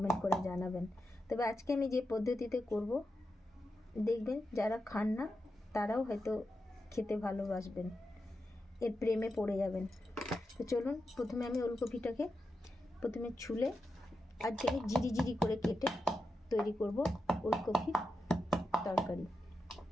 করে জানাবেন। তবে আজকে আমি যে পদ্ধতিতে করব দেখবেন যারা খান না তারাও হয়তো খেতে ভালোবাসবেন, এর প্রেমে পড়ে যাবেন। তো চলুন, প্রথমে আমি ওলকপিটাকে ছুলে আজকে আমি জিরি জিরি করে কেটে তৈরি করব ওলকপির তরকারি।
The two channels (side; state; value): both; normal; correlation 0.88